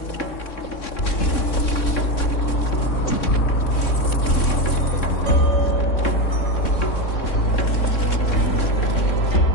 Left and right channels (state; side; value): late; right; 3.6 ms